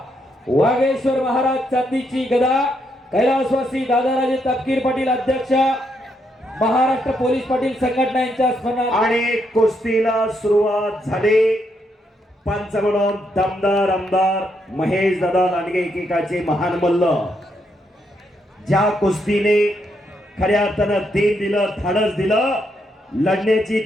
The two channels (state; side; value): normal; both; correlation 0.78